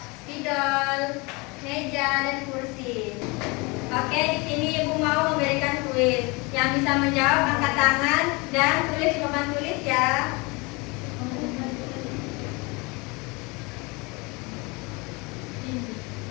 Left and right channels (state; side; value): quieter; right; 27.2 dB